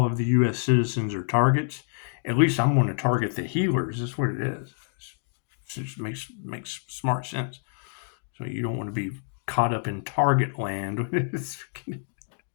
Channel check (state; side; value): silent; right; digital silence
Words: of the U.S. citizens are targets, at least I'm going to target the healers. That's what it is. It just makes smart sense. So you don't want to be caught up in target land.